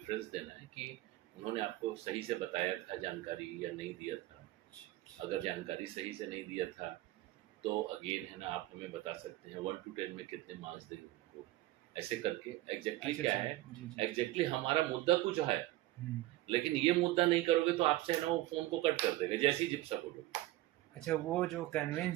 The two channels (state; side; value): quieter; left; 16.8 dB